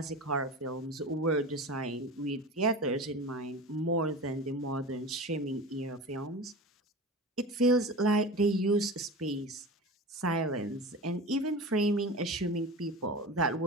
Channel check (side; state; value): both; normal; correlation 0.31